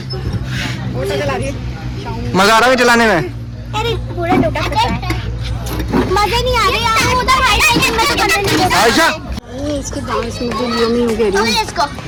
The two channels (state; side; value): identical; both; correlation 1.00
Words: मजा आ रहा है चलाने में? अरे पूरा टूटा फटा है, मजे नहीं आ रहे यार। उधर हाइट में तो करने नहीं देता। आयशा इसके डांस में जो यमी हो गई है इसको